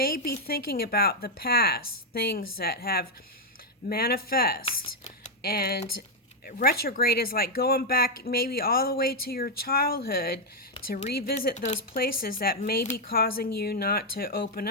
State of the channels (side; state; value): both; normal; correlation 0.00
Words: be thinking about the past, things that have manifest. And retrograde is like going back maybe all the way to your childhood to revisit those places that may be causing you not to open